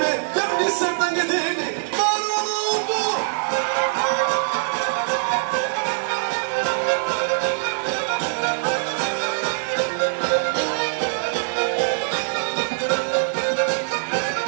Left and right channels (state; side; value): silent; left; digital silence